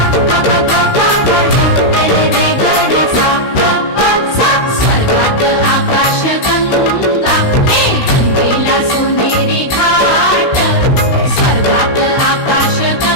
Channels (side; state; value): right; late; 16 ms